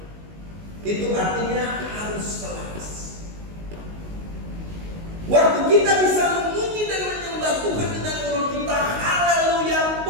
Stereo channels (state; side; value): late; left; 19 ms